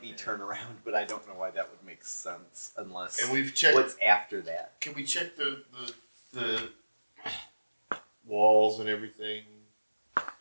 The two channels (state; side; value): inverted; both; correlation -1.00